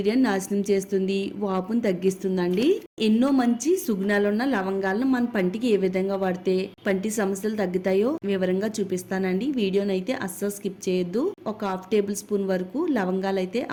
నాశనం చేస్తుంది, వాపును తగ్గిస్తుందండి. ఎన్నో మంచి సుగుణాలున్న లవంగాలను మన పంటికి ఏ విధంగా వాడితే పంటి సమస్యలు తగ్గుతాయో వివరంగా చూపిస్తానండి. వీడియోనైతే అస్సలు స్కిప్ చేయొద్దు. ఒక హాఫ్ టేబుల్ స్పూన్ వరకు లవంగాలు అయితే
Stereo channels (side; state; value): both; identical; correlation 1.00